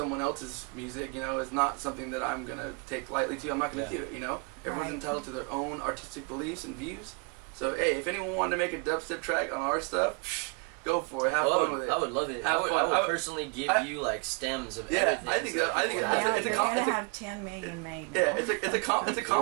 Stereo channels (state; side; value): quieter; left; 34.4 dB